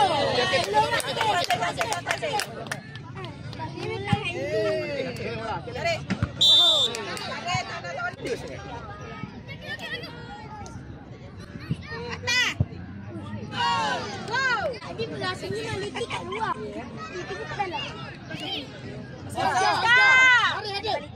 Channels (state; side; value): identical; both; correlation 1.00